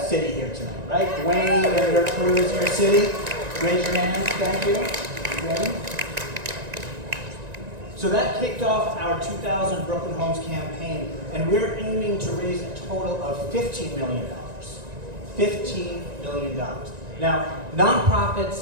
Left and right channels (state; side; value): late; left; 1.9 ms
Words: city here tonight, right? Dwayne and your crew is here, city. Raise your hands, thank you. Dwayne. So that kicked off our 2000 Brooklyn Homes campaign, and we're aiming to raise a total of $15 million. $15 million. Now,